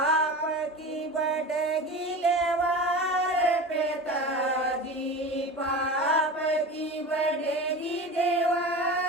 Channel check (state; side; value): normal; both; correlation 0.31